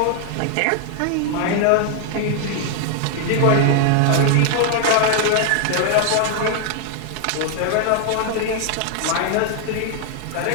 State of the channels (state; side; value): different; both; correlation 0.00